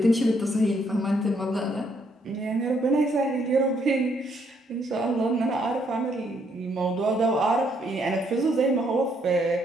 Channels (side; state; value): both; normal; correlation 0.71